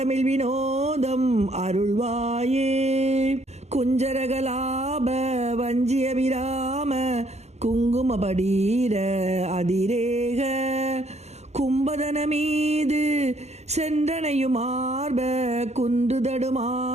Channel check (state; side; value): late; left; 0.32 ms